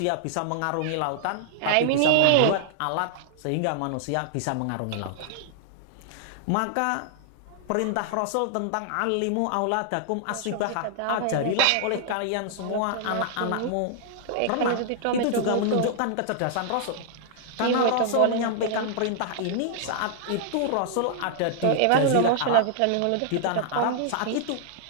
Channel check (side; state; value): both; different; correlation -0.01